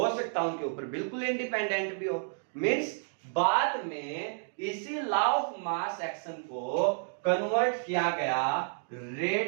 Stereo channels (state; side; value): silent; left; digital silence